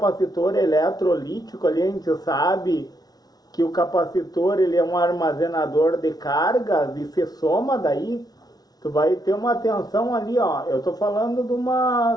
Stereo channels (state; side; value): late; right; 0.19 ms